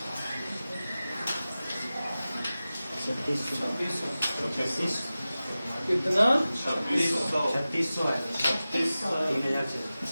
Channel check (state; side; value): inverted; both; correlation -0.95